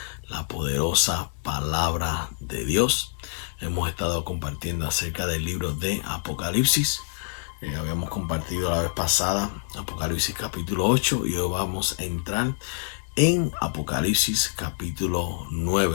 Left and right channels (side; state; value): right; silent; digital silence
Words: la poderosa palabra de Dios. Hemos estado compartiendo acerca del libro de Apocalipsis. Habíamos compartido la vez pasada Apocalipsis capítulo 8 y hoy vamos a entrar en Apocalipsis capítulo